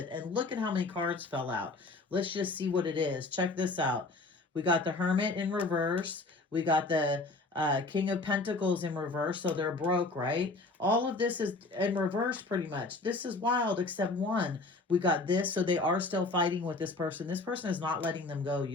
And look at how many cards fell out. Let's just see what it is. Check this out. We got the Hermit in reverse. We got the King of Pentacles in reverse, so they're broke, right? All of this is in reverse pretty much. This is wild, except one. We got this, so they are still fighting with this person. This person is not letting them go,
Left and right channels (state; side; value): quieter; right; 3.3 dB